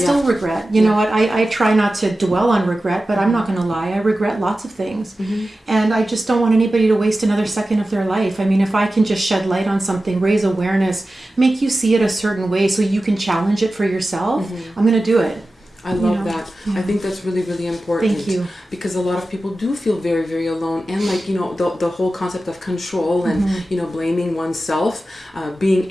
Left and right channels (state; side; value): normal; both; correlation 0.94